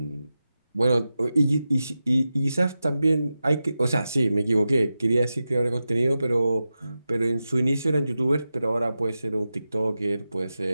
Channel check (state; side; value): inverted; both; correlation -0.92